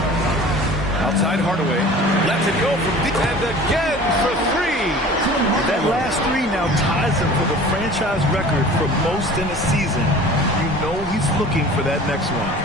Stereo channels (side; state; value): both; normal; correlation 0.43